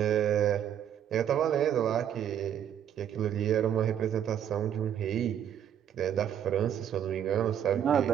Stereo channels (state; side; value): quieter; left; 9.6 dB